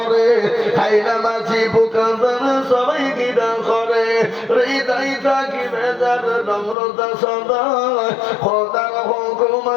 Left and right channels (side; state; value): right; drops out; at 6.8 s